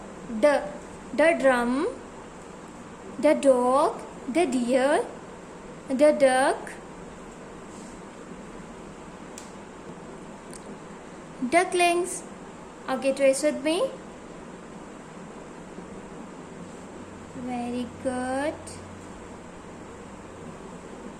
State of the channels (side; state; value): both; identical; correlation 1.00